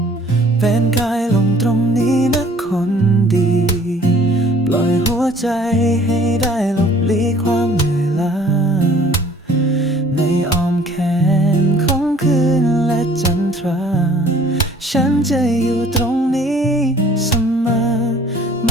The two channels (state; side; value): normal; both; correlation 0.54